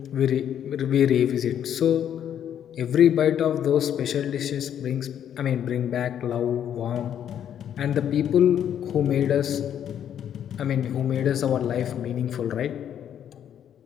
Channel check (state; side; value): quieter; right; 9.6 dB